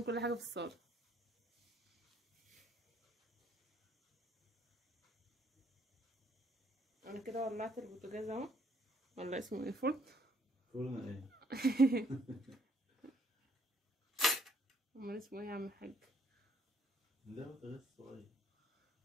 كل حاجة في الصالة. انا كده ولعت البوتاجاز اهو، ولا اسمه ايه، فرن. فرن ايه؟ امال اسمه ايه يا عم الحاج؟ ده بوتاجاز صغير.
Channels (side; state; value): both; normal; correlation 0.65